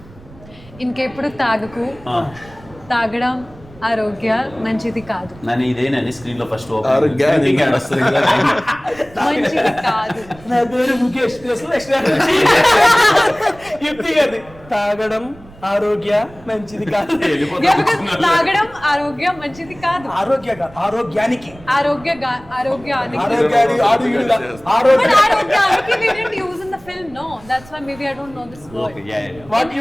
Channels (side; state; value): right; noise; rumble, 22 dB below the sound